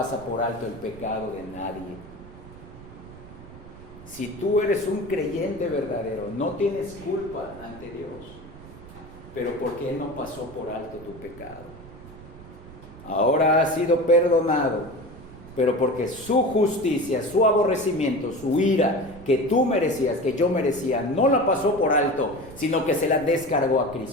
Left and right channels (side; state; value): right; noise; rumble, 17 dB below the sound